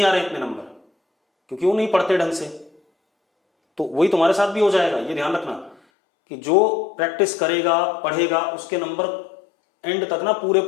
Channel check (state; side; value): drops out; right; at 5.8 s